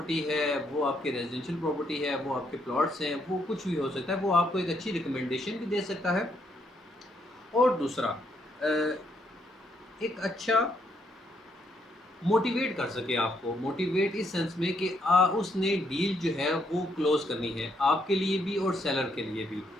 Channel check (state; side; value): normal; both; correlation 0.74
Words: ہے، وہ آپ کے ریزیڈینشیل پراپرٹی ہے، وہ آپ کے پلاٹس ہیں، وہ کچھ بھی ہو سکتا ہے. وہ آپ کو ایک اچھی ریکمنڈیشن بھی دے سکتا ہے. اور دوسرا ایک اچھا موٹیویٹ کر سکے آپ کو، موٹیویٹ اس سینس میں کہ اس نے ڈیل جو ہے وہ کلوز کرنی ہے آپ کے لیے بھی اور سیلر کے لیے بھی.